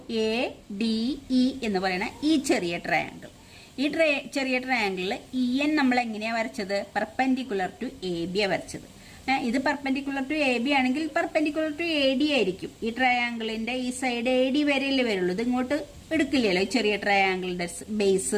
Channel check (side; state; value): both; identical; correlation 1.00